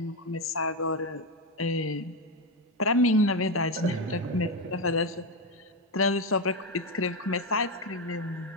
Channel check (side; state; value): both; normal; correlation 0.09